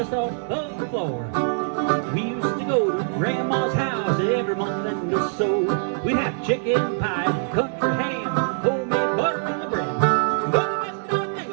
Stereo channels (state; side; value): silent; left; digital silence